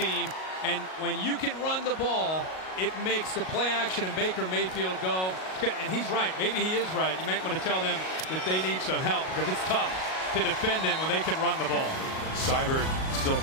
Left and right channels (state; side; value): late; right; 38 ms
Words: and when you can run the ball, it makes the play action and Baker Mayfield go. And he's right. Maybe he is right. You might want to tell them that they need some help because it's tough to defend them when they can run the ball. Seibert still